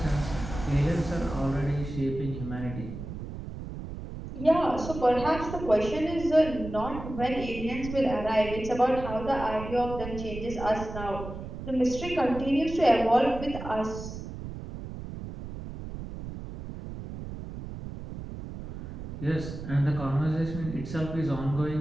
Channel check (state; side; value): noise; right; rumble, 9 dB below the sound